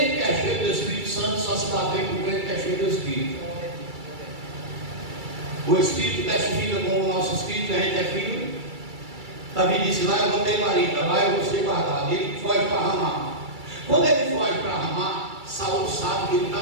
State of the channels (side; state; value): left; late; 2.3 ms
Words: que é cheio do Espírito Santo só se dá bem com crente que é cheio do Espírito. O Espírito testifica com o nosso Espírito que a gente é filho. Davi disse: lá eu vou ter marido, lá eu vou ser guardado. E ele foge para Ramá. Quando ele foge para Ramá, Saul sabe que ele está